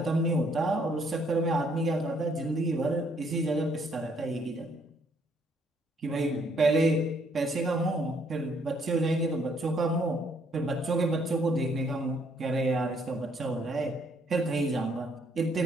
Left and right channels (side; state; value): both; normal; correlation 0.68